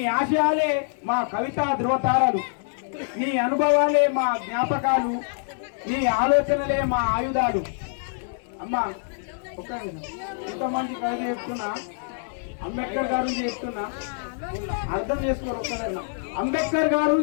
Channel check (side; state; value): right; silent; 62 dB below the other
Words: ఆశయాలే మా కవితా ధ్రువతారాలు, నీ అనుభవాలే మా జ్ఞాపకాలు, నీ ఆలోచనలే మా ఆయుధాలు. అమ్మా ఒక్క ఇంతమంది కవిత చెప్తున్నా, అంబేద్కర్ గారి నుంచి చెప్తున్నా, అర్థం చేసుకోరు. ఒక్కదన్నా అంబేద్కర్ గారి